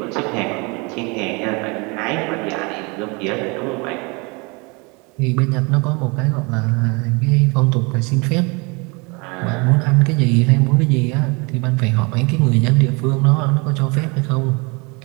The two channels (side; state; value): left; quieter; 29.0 dB